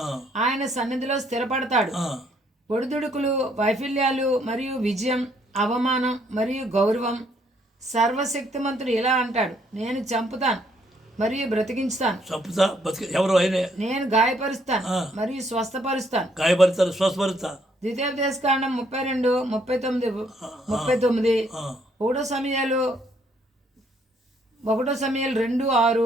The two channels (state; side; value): normal; both; correlation 0.68